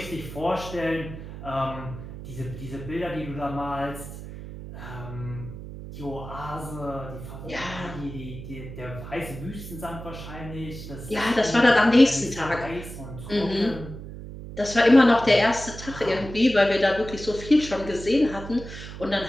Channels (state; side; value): noise; right; hum, 11 dB below the sound